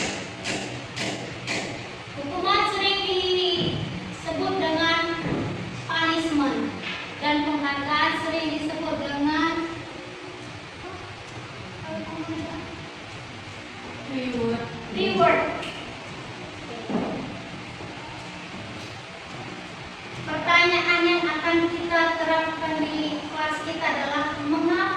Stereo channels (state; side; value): identical; both; correlation 1.00